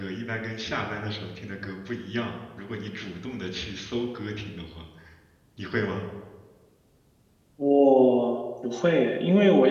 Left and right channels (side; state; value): both; identical; correlation 1.00